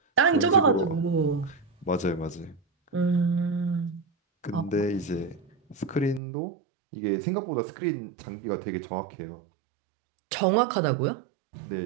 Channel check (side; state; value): left; drops out; at 6.2 s